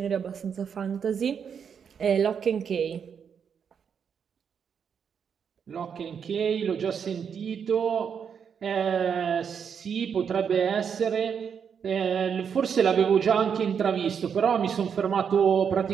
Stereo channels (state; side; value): quieter; left; 7.2 dB